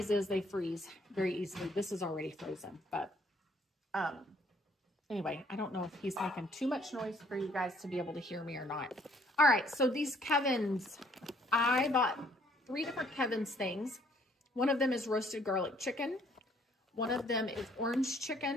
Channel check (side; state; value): both; normal; correlation 0.63